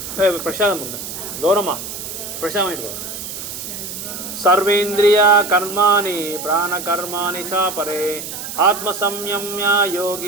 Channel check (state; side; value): noise; right; hiss, 8 dB below the sound